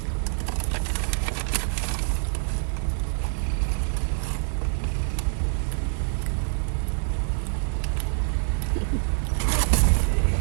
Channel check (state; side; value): silent; left; 56 dB below the other